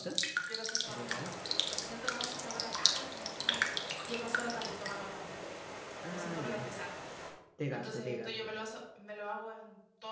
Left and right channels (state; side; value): identical; both; correlation 1.00